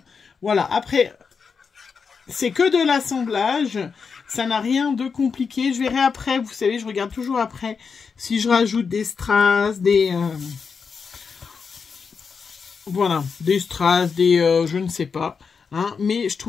Voilà, après, c'est que de l'assemblage. Ça n'a rien de compliqué. Je verrai après, vous savez, je regarde toujours après si je rajoute des strass, voilà, des strass, je ne sais pas. Hein, mais je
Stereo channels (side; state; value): right; quieter; 5.6 dB